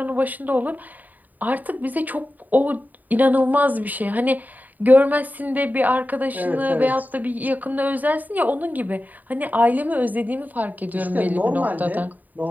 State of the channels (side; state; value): left; late; 0.083 ms